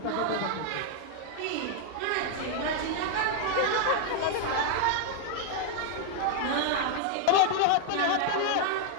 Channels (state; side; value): different; both; correlation 0.00